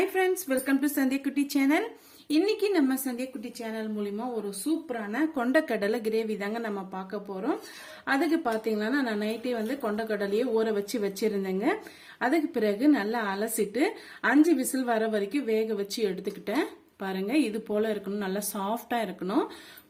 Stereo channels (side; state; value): both; identical; correlation 1.00